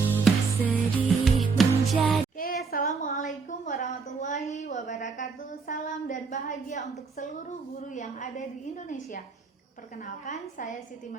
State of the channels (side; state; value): left; quieter; 4.8 dB